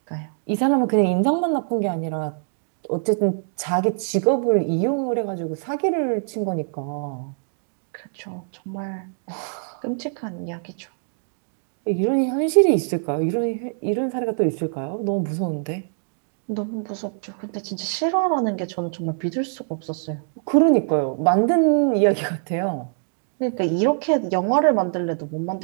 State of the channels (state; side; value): silent; left; digital silence